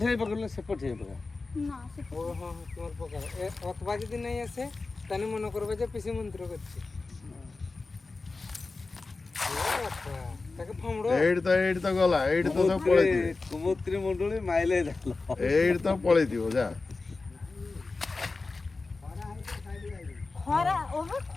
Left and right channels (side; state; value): right; quieter; 3.7 dB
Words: ହେଇ ପକେଇଲେ ସେପଟ ହେଇ ପକା না সে ও হ্যাঁ তোমার প্রকার অথবা যদি নাই আসে তাহলে মনে করবে যে পিসি মন্ত্র করছে ତାକୁ ଫମଡ ଏଇଠି ତ ଗଲା ଏଇଠି ତ ସବୁ ପଳେଇଥିବେ କୁମୁତ୍ରୀ ମୁଣ୍ଡୁଳି ମାଇଲେ ଜାଲ ଏଇଠି ତ ପଳେଇଥିବ ଯା ଖରା